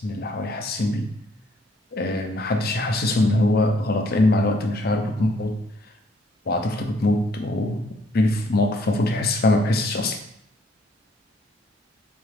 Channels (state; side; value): normal; both; correlation 0.65